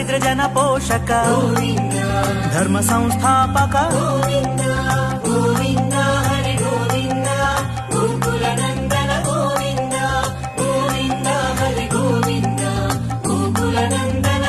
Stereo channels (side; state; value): both; identical; correlation 1.00